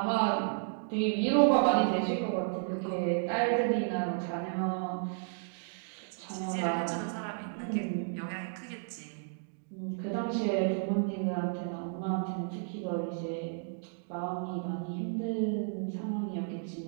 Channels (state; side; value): silent; left; digital silence